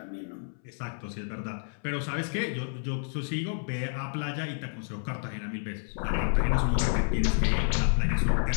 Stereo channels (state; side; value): silent; right; 58 dB below the other